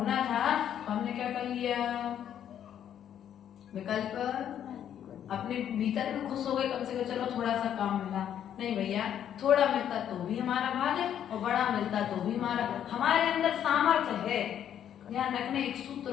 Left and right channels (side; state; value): right; quieter; 9.8 dB